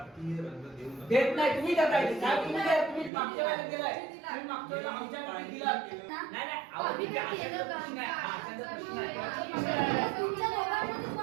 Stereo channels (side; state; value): left; drops out; at 3.1 s